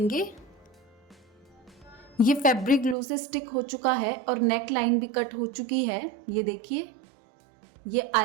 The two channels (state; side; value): drops out; left; at 3.0 s